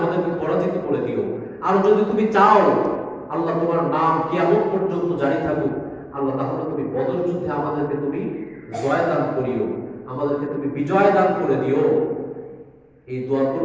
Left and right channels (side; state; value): both; identical; correlation 1.00